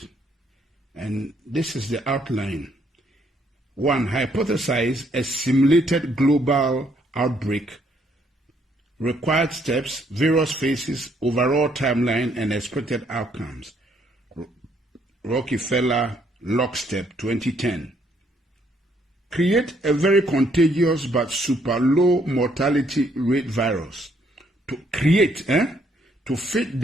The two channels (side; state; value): both; normal; correlation 0.69